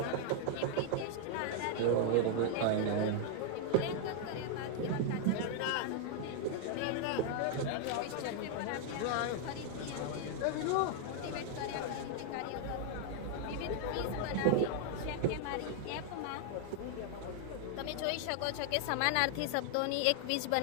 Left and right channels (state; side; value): different; both; correlation 0.00